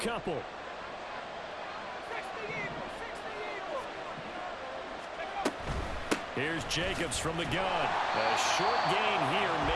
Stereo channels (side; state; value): both; identical; correlation 1.00